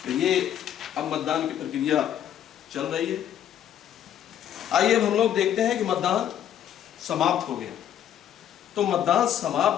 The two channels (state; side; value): quieter; right; 10.5 dB